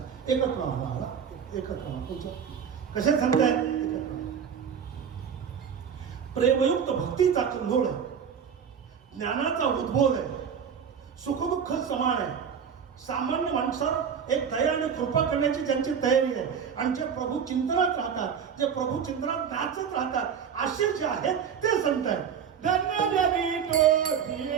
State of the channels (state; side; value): quieter; left; 7.4 dB